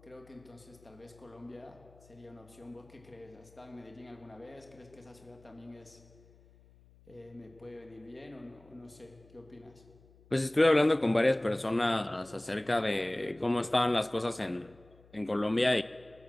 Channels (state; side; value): noise; left; hum, 26 dB below the sound